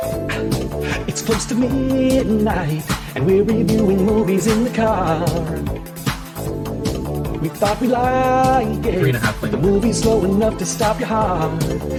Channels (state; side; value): identical; both; correlation 1.00